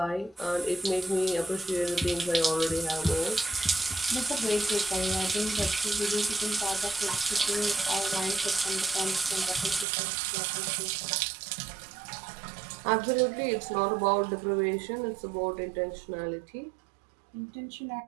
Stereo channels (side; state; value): left; drops out; at 9.9 s